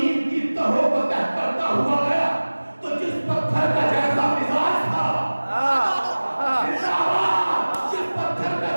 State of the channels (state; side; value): inverted; both; correlation -1.00